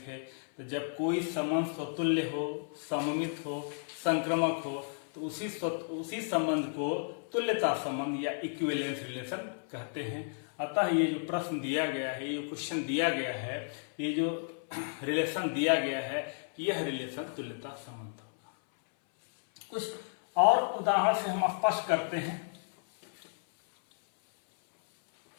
तो जब कोई संबंध स्वतुल्य हो, सममित हो, संक्रमक हो तो उसी संबंध को तुल्यता संबंध या इक्विवेलेंस रिलेशन कहते हैं। अतः ये जो प्रश्न दिया गया है, ये क्वेश्चन दिया गया है, ये जो रिलेशन दिया गया है, यह रिलेशन तुल्यता संबंध होगा। कुछ और उदाहरण से हम स्पष्ट करते हैं।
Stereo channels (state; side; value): silent; right; 56 dB below the other